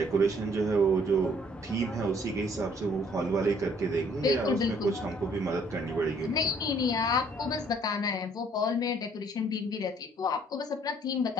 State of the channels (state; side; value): normal; both; correlation 0.61